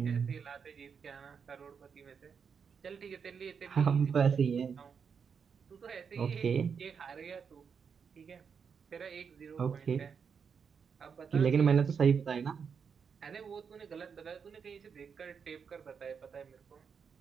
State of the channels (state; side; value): quieter; left; 6.4 dB